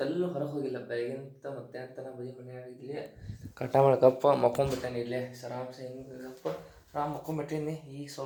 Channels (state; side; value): identical; both; correlation 1.00